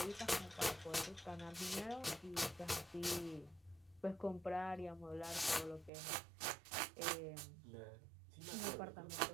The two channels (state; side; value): drops out; left; at 5.9 s